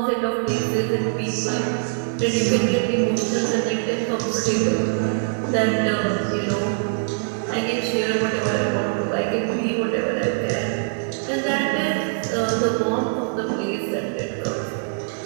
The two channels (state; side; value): silent; left; 63 dB below the other